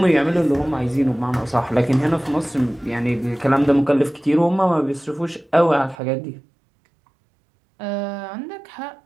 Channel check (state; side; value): drops out; left; at 6.0 s